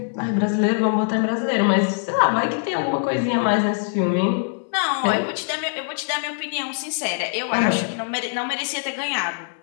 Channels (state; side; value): silent; right; 64 dB below the other